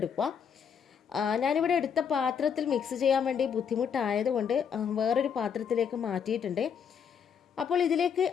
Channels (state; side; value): quieter; right; 7.3 dB